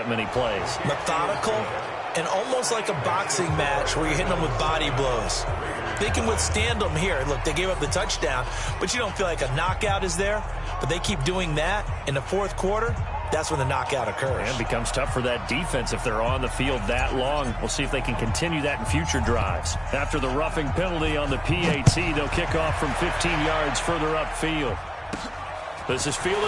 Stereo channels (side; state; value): both; identical; correlation 1.00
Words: many plays. Methodical and almost like a boxing match where you're hitting them with body blows. They can withstand them here. Look, they gave up the touchdown, but you don't feel like a knockout is there. But they keep doing that in the fourth quarter. That's when the knockout occurs. And it becomes tough for that defense if they're on the field that long. We'll see if they can continue that in future drives. After the roughing penalty on the PAT, they'll kick off from 15 yards further upfield. This is